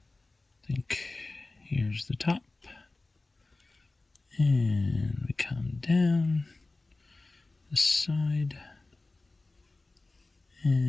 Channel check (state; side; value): quieter; right; 3.2 dB